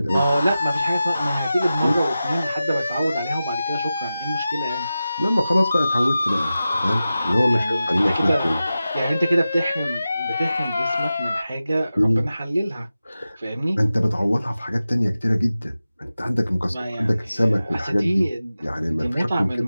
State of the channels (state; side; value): inverted; both; correlation -0.94